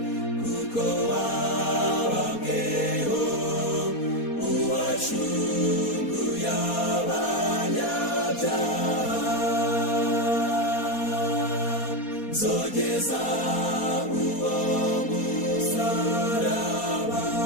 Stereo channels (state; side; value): late; right; 4.2 ms